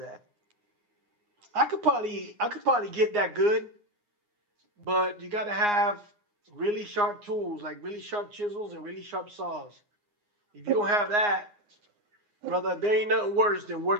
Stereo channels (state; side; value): late; left; 9.7 ms